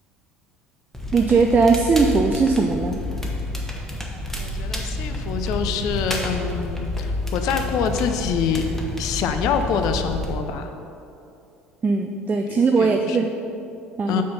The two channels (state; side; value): normal; both; correlation 0.61